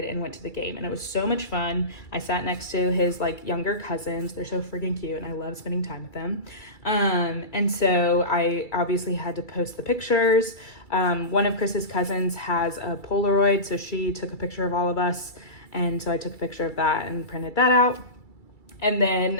and went to the game, and it was so much fun. I sat next to his like younger cousins. They're so freaking cute, and I love spending time with them. And so I obviously had to post the pictures. One of Chris's cousins has a Polaroid, so she took a picture of all of us, and so I took a picture of that and printed that out. And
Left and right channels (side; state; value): right; late; 2.3 ms